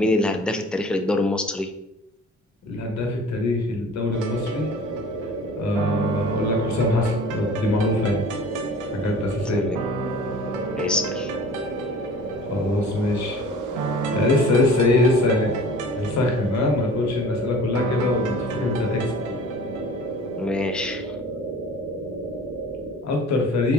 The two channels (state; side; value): normal; both; correlation 0.44